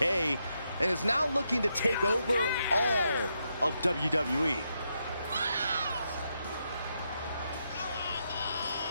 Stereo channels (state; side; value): inverted; both; correlation -0.82